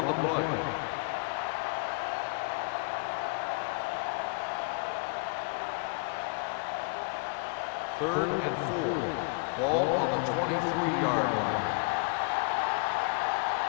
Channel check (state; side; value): quieter; right; 32.1 dB